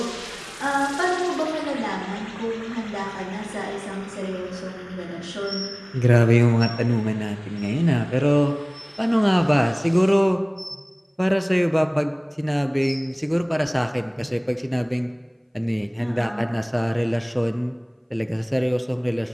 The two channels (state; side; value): identical; both; correlation 1.00